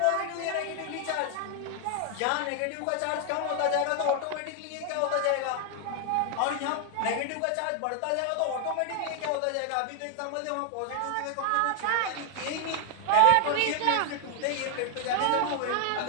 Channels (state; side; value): different; both; correlation 0.00